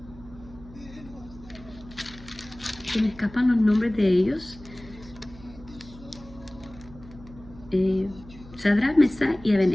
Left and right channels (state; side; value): noise; right; hum, 19 dB below the sound